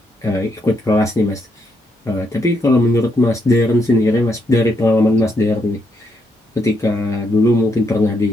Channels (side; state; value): both; normal; correlation 0.77